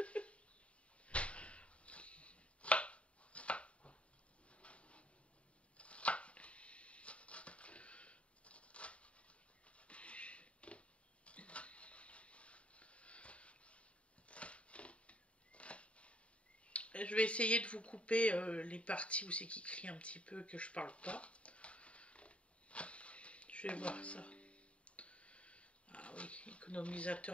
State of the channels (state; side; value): late; right; 0.062 ms